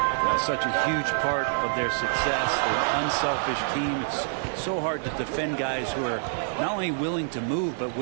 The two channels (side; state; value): left; silent; digital silence